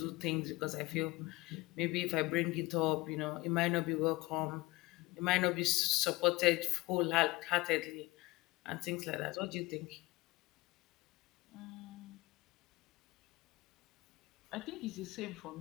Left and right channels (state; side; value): quieter; right; 21.2 dB